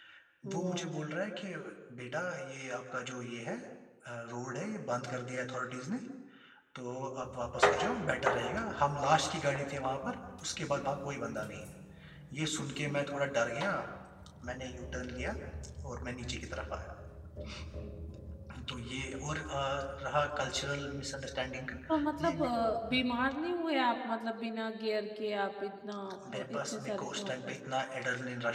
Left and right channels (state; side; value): identical; both; correlation 1.00